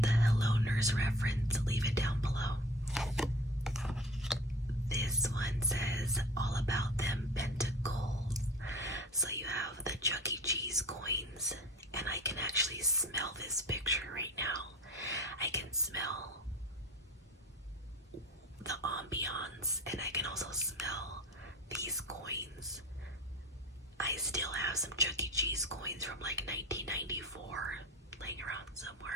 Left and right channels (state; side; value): normal; both; correlation 0.38